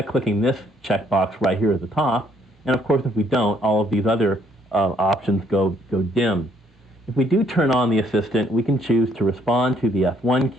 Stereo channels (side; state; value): both; normal; correlation 0.67